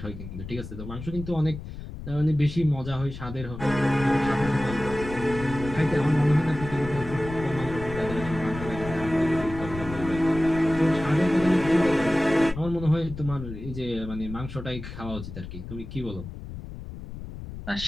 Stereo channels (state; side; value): noise; left; rumble, 10 dB below the sound